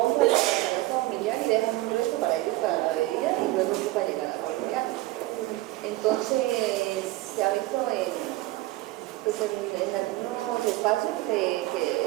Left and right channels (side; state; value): left; quieter; 18.5 dB